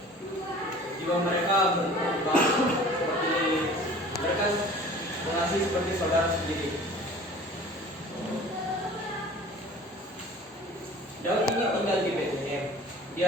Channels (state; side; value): normal; both; correlation 0.45